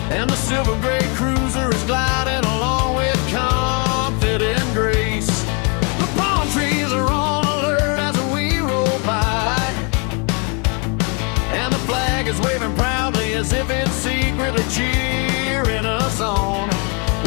and the silver gray cruiser is gliding along with confident grace. The palm trees are on alert as we roll by, and the flag is waving proudly as if it's secretly cheering us on.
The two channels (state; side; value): quieter; right; 35.0 dB